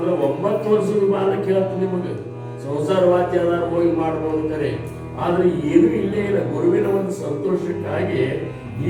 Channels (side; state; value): both; identical; correlation 1.00